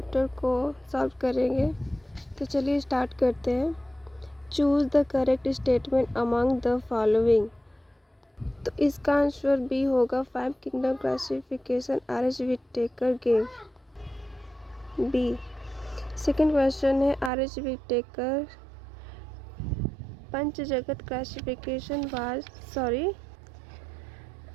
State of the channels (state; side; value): drops out; left; at 17.3 s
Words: को सॉल्व करेंगे, तो चलिए स्टार्ट करते हैं। Choose the correct statement among the following. तो इसका आंसर बी होगा। 5 kingdom classification R H. Whittaker give. B. Second question है आर.एच. विटेकर पंच जगत क्लासिफिकेशन वाज